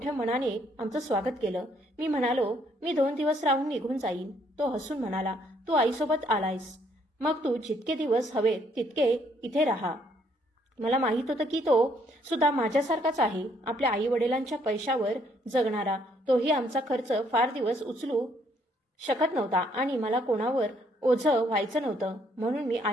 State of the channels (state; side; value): normal; both; correlation 0.68